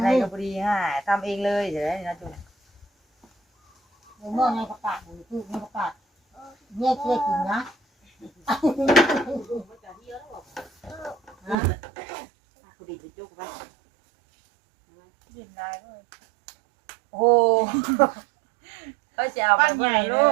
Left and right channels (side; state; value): left; drops out; at 11.6 s